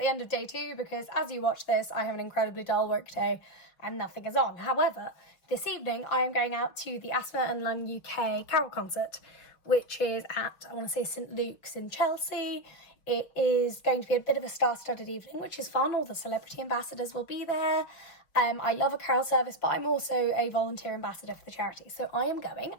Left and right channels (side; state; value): right; late; 5.6 ms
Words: end of day 2 because as you watch this I have an incredibly dull work day and nothing is on. However, this evening I am going out to the Asthma Lung UK carol concert, which is at, I want to say, St Luke's in Chelsea. It is going to be a bit of a star-studded evening, which is fun. All the celebrity ambassadors will be there. I love a carol service, but I'm also a volunteer ambassador for the charity. So I am going,